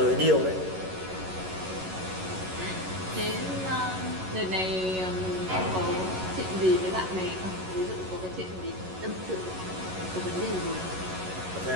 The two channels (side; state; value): left; late; 11 ms